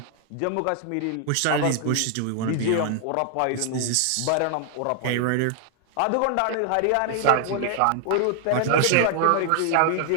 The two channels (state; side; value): different; both; correlation 0.00